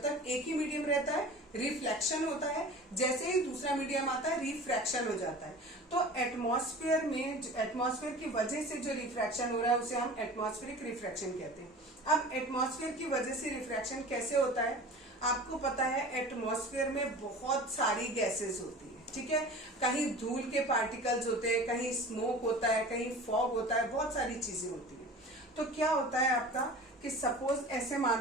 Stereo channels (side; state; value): both; normal; correlation 0.38